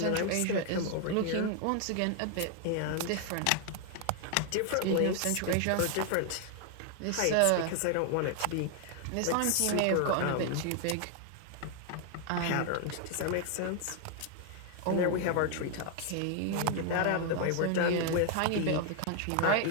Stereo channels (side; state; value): both; different; correlation 0.00